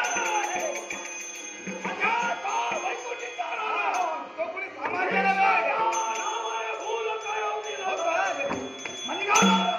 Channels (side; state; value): both; identical; correlation 1.00